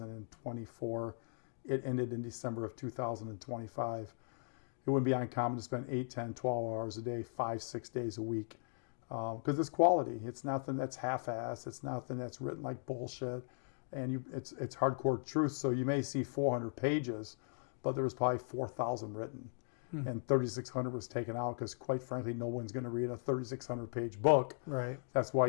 It ended in December of 2025. It wouldn't be uncommon to spend 8, 10, 12 hours a day, 5, 6 days a week. Because it's quality. It's nothing that's half-assed. It's nothing that's written like bullshit. And it's hardcore truth. So you may see 400 pages, but there was probably 4,000 written. And 3,600 was taken out because, quite frankly, no one's going to read a 3,600-page book. Right. That's why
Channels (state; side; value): silent; right; digital silence